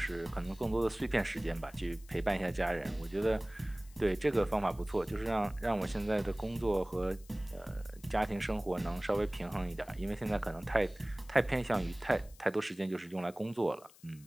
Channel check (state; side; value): noise; left; hiss, 24 dB below the sound